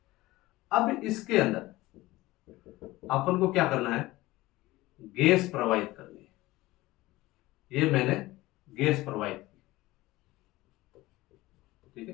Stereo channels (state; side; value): quieter; right; 18.7 dB